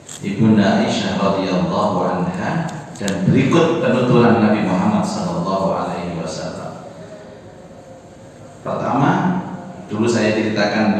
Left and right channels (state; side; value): identical; both; correlation 1.00